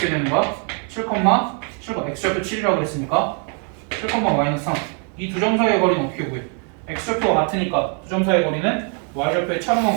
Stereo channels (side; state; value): left; quieter; 39.6 dB